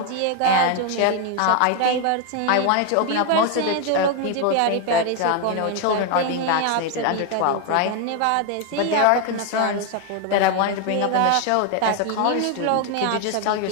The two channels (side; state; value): both; different; correlation 0.01